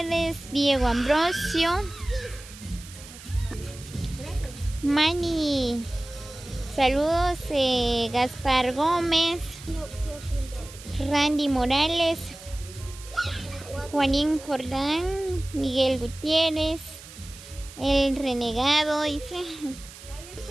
Diego Ambrosio, Mani, saludos, Gaspar Gómez, Randy Morales, Juanín Jordán, Miguel Gutiérrez, El Renegado, dice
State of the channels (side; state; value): right; noise; hiss, 17 dB below the sound